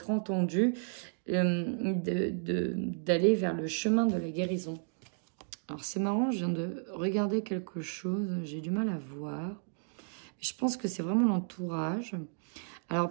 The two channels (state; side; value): silent; left; digital silence